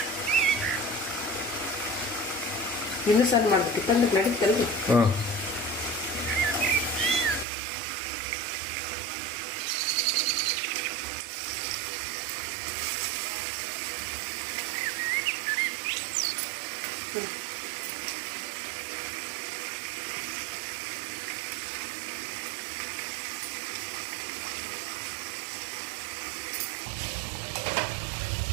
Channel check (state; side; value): drops out; left; at 7.5 s